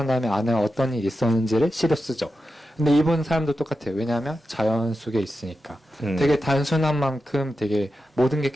다음에 안에 어떤 일이 있었는지를 시로 쓰죠. 근데 이분 사람도 똑같아요. 왜냐하면 자연 속에 있으니까. 되게 단순한 만큼 되게 모든 게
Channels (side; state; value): both; normal; correlation 0.90